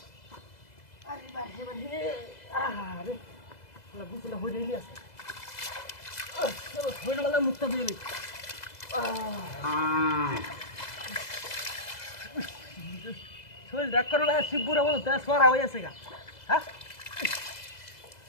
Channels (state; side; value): late; right; 2.0 ms